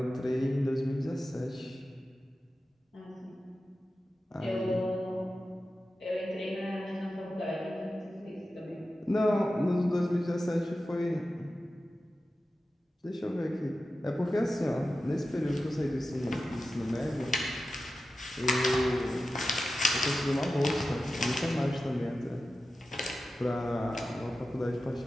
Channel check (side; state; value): both; normal; correlation 0.93